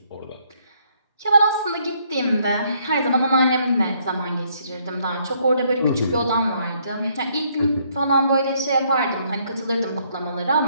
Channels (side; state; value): both; inverted; correlation -0.69